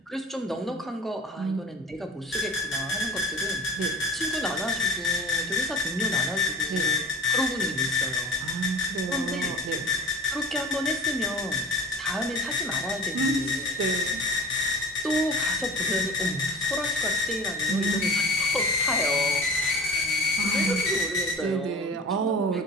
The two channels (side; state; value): both; normal; correlation 0.39